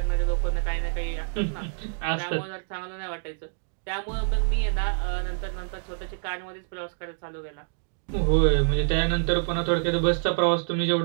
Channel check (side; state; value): left; silent; digital silence